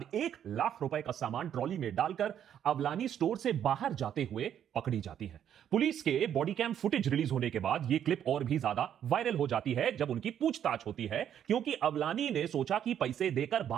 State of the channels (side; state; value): left; quieter; 9.7 dB